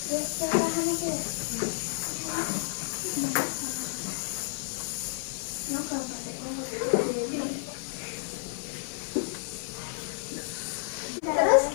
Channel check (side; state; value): right; silent; 57 dB below the other